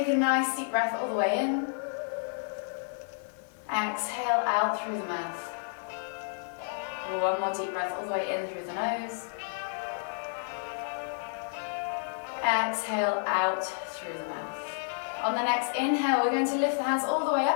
a nice deep breath all the way in. Exhale out through the mouth. One more deep breath all the way in through the nose. Exhale out through the mouth. On the next inhale, we're going to lift the hands all the way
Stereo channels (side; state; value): right; silent; 57 dB below the other